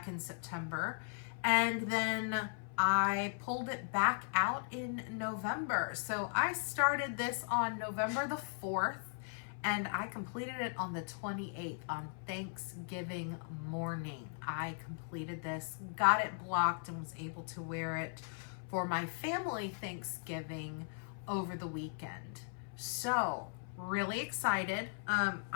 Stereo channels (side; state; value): right; silent; 52 dB below the other